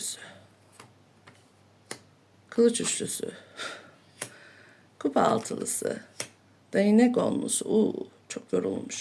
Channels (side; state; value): both; identical; correlation 1.00